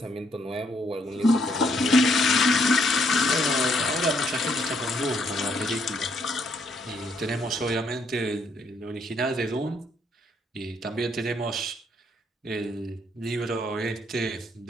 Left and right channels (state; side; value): normal; both; correlation 0.71